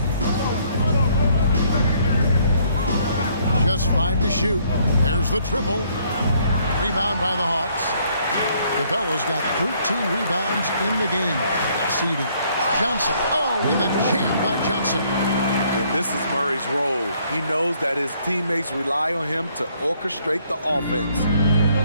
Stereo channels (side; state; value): both; inverted; correlation -0.66